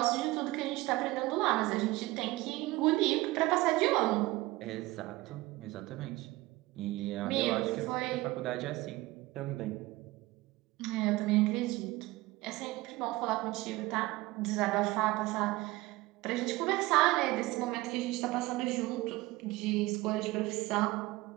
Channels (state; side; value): quieter; left; 19.8 dB